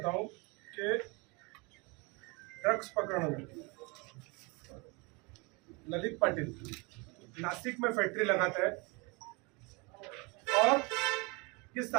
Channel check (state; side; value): quieter; left; 28.7 dB